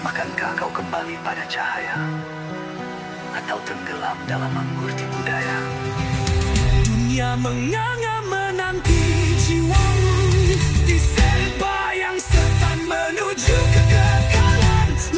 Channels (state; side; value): identical; both; correlation 1.00